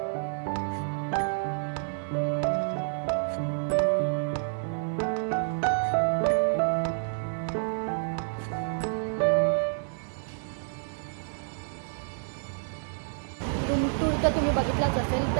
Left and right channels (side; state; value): left; silent; 59 dB below the other